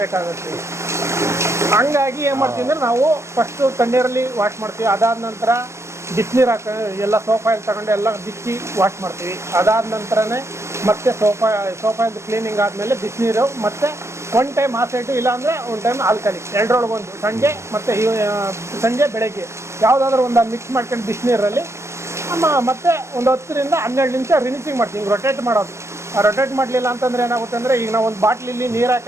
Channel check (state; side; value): late; left; 0.13 ms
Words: ಹಂಗಾಗಿ ಏನು ಮಾಡ್ತೀವಿ ಅಂದರೆ, ನಾವು ಫಸ್ಟು ತಣ್ಣೀರಲ್ಲಿ ವಾಶ್ ಮಾಡ್ತೀವಿ. ಅದಾದ ನಂತರ ಬಿಸಿನೀರು ಎಲ್ಲ ಸೋಪ್ ಆಯಿಲ್ ತಗೊಂಡು ಎಲ್ಲ ಬಿಚ್ಚಿ ವಾಶ್ ಮಾಡ್ತೀವಿ. ಅದಾದ ನಂತರನೇ ಮತ್ತೆ ಸೋಪ್ ಆಯಿಲ್ ಕ್ಲೀನಿಂಗ್ ಆದಮೇಲೆ ಬಿಸಿನೀರು, ಮತ್ತು ಒನ್ ಟೈಮ್ ಆ ಸೈಡು, ಇಲ್ಲಾಂದರೆ ಒನ್ ಟೈಮ್ ಆಲ್ಕಲಿ, ಎರಡರೊಳಗೊಂದು ಸಂಜೆ ಮತ್ತು ಸಂಜೆ ಬೆಳಗ್ಗೆ ಯಾವುದಾದ್ರೂ ಒಂದು ಮಿಕ್ಸ್ ಮಾಡ್ಕೊಂಡು ಬಿಸಿನೀರಲ್ಲಿ ಮತ್ತೆ ಒಂದು 10 ರಿಂದ 12 ನಿಮಿಷ ರಿನಿಸಿಂಗ್ ಮಾಡ್ತೀವಿ. ಹಿಂಗೆ ರೊಟೇಟ್ ಮಾಡೋದು. ಆ ರೊಟೇಟ್ ಮಾಡಲಿಲ್ಲ ಅಂತಂದರೆ ಏನಾಗುತ್ತೆ ಅಂದರೆ, ಈಗ ನಾವು ಒಂದು ಬಾಟ್ಲಿಲ್ಲಿ ನೀರು